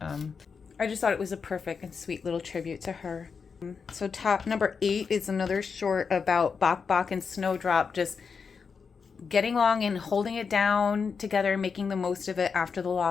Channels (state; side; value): quieter; right; 5.6 dB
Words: I just thought it was a perfect and sweet little tribute to her. So top number 8 is another short about Bok Bok and Snowdrop just getting along and holding it down together, making the most of it after the